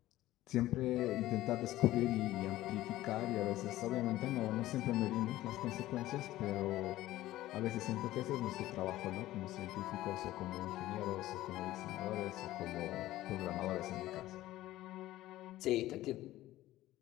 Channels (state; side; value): quieter; right; 15.6 dB